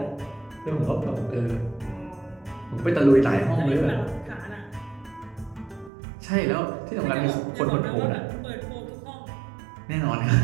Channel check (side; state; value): left; drops out; at 5.9 s